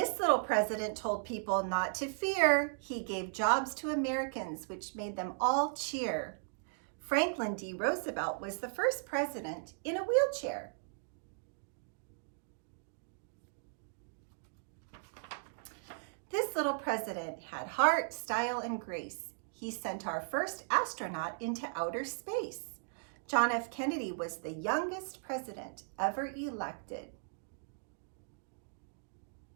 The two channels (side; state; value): left; silent; digital silence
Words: little president told people not to fear. He gave jobs to Americans, which made them all cheer. Franklin D. Roosevelt was the first president in a wheelchair. This little president had heart, style, and grace. He sent our first astronaut into outer space. John F. Kennedy was the youngest president ever elected.